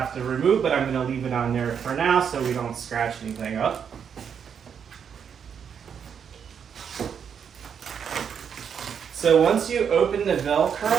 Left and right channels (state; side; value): quieter; left; 7.5 dB